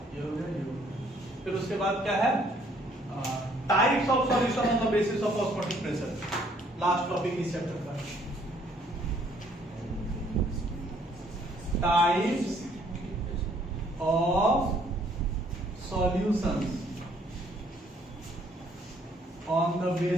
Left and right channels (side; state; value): both; normal; correlation 0.64